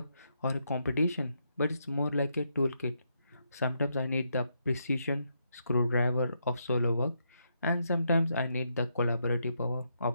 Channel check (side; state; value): both; inverted; correlation -0.79